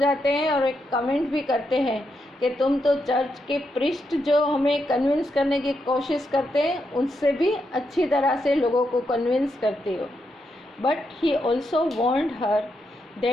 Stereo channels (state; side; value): normal; both; correlation 0.82